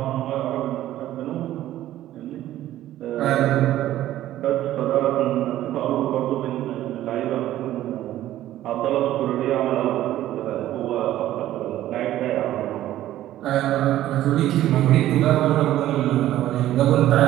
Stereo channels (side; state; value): left; quieter; 13.6 dB